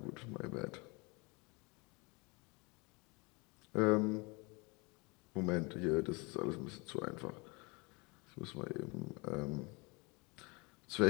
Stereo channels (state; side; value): quieter; right; 28.1 dB